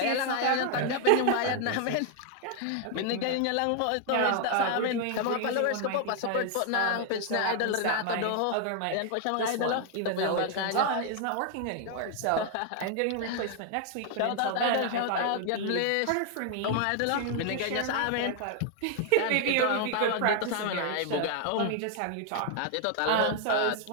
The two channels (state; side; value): different; both; correlation 0.00